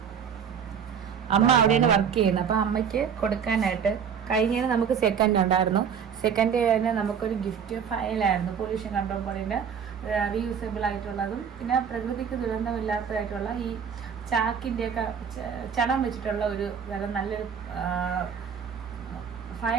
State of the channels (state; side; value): quieter; left; 7.3 dB